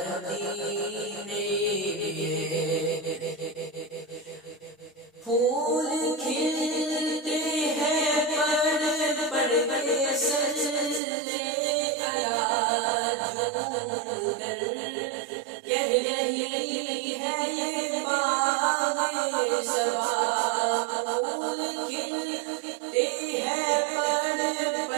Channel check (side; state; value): left; drops out; at 11.0 s